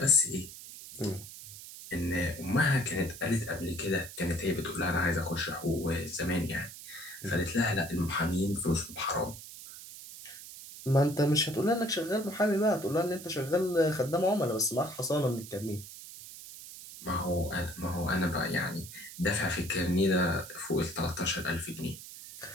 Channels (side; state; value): right; noise; hiss, 14 dB below the sound